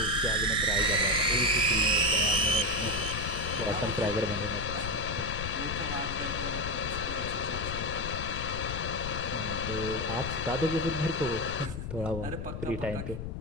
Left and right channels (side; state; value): left; noise; rumble, 6 dB below the sound